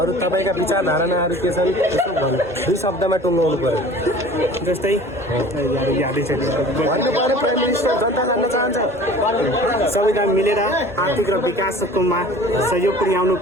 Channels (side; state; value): both; normal; correlation 0.44